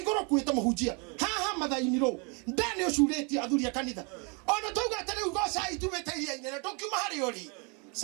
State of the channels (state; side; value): quieter; left; 33.2 dB